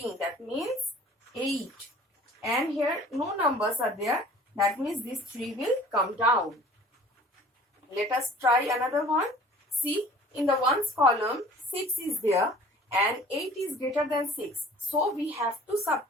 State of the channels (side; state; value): both; normal; correlation 0.48